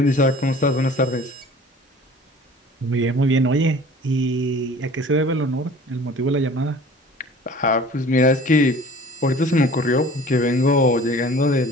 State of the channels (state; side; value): normal; both; correlation 0.46